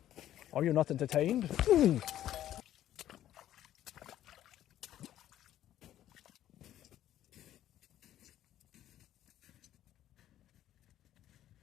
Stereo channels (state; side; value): quieter; right; 12.3 dB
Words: Are you not entertained? Ooh.